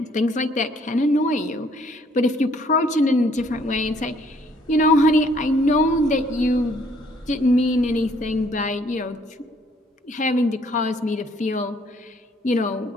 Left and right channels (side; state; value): both; normal; correlation 0.63